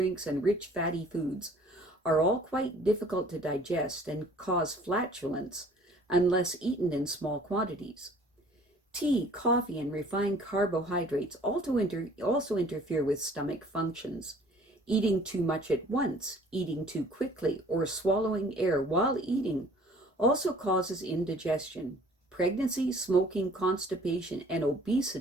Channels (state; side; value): normal; both; correlation 0.53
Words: and rich fatty foods are all quite difficult to digest and cause flatulence unless eaten in small quantities. Tea, coffee, and refined carbohydrates also interfere with stomach functions. Eating too much at once, eating too quickly, or swallowing air while eating also causes indigestion. Pregnancy, smoking, constipation, and